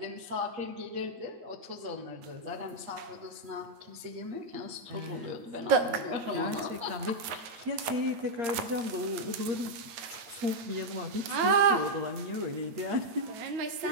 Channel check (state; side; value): late; left; 9.3 ms